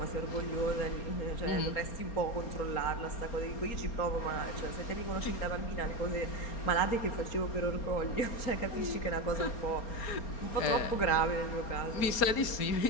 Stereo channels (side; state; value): right; late; 4.3 ms